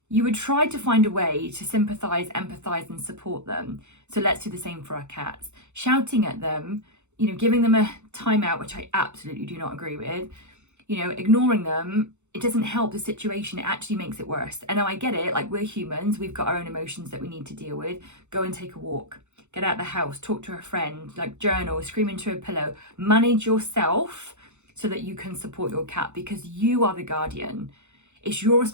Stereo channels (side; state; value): left; late; 0.83 ms